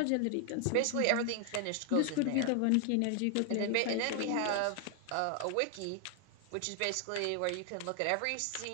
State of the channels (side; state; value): both; different; correlation 0.00